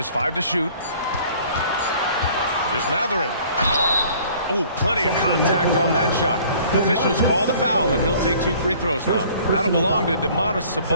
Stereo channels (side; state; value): both; inverted; correlation -0.53